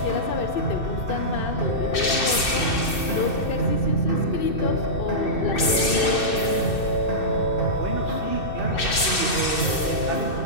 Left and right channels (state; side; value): late; right; 2.6 ms